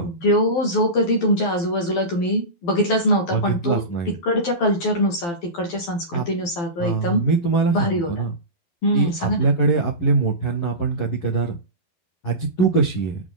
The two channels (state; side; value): late; right; 12 ms